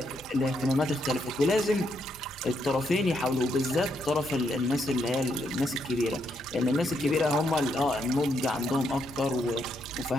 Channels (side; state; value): both; normal; correlation 0.77